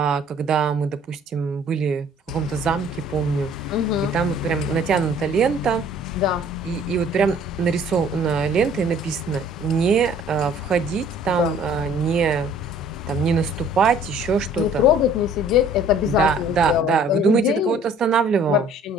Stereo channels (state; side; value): normal; both; correlation 0.55